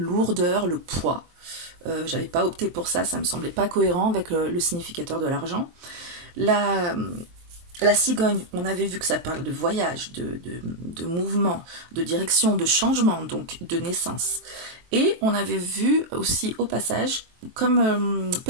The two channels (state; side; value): late; left; 23 ms